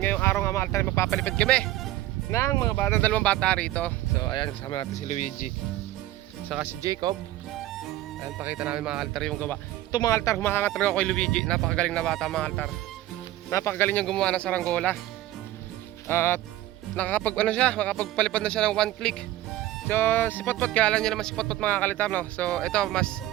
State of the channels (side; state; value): left; quieter; 15.3 dB